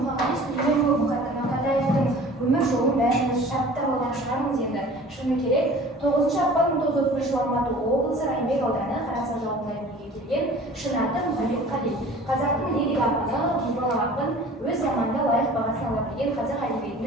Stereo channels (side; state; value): both; normal; correlation 0.45